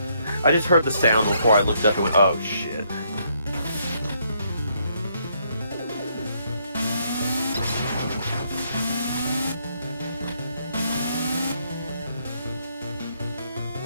I just heard the sound before I looked up and went, oh shit.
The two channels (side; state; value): both; inverted; correlation -0.72